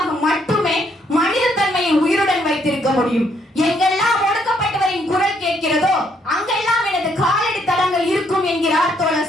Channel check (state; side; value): normal; both; correlation 0.70